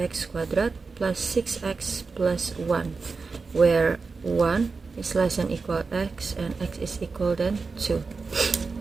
squared plus 6x plus 1, where 1 is less than equal x and x is equal than 2.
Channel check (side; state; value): left; quieter; 4.4 dB